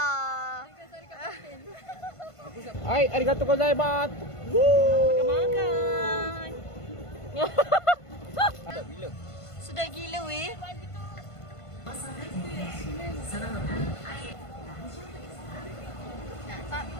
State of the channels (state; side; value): late; right; 1.5 ms